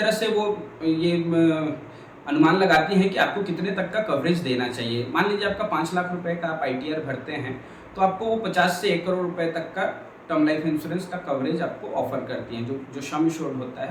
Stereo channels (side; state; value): both; identical; correlation 1.00